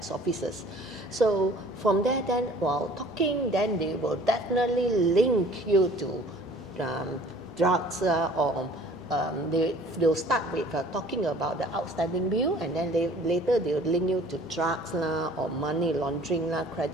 officers. So from there, then while talking, then they will definitely link you to drugs or they'll start with talking about the outstanding bill, and then later they'll link you to drugs or money laundering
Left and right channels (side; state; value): both; normal; correlation 0.51